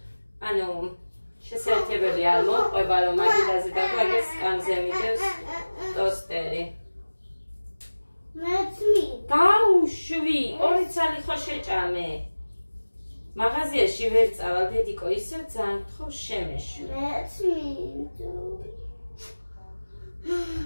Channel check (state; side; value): inverted; both; correlation -1.00